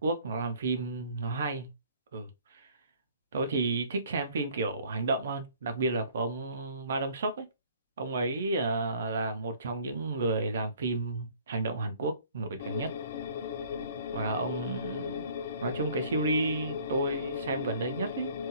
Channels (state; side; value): inverted; both; correlation -0.55